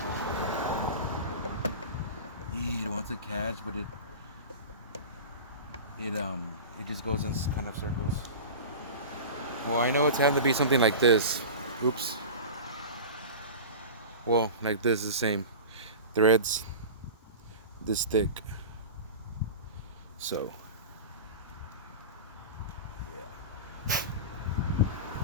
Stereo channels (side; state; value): both; inverted; correlation -0.31